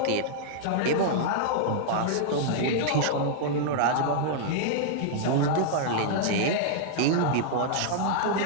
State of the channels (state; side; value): different; both; correlation -0.01